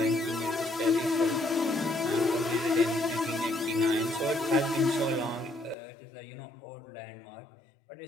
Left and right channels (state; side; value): drops out; right; at 5.8 s